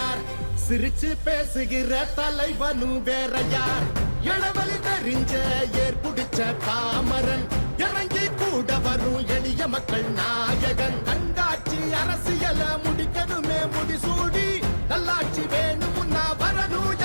சிரிச்சு பேசுகிற தலைவனு வேறையார். இளவலி தெரிஞ்ச ஏற்புடிச்ச பாமரன், இறங்கி கூட வரும் எளிய மக்கள் நாயகன். கண்காட்சி அரசியல முடிக்கணுமே முடிசூடி, நல்லாட்சி வேணும்னா வரணும்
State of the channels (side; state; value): both; inverted; correlation -1.00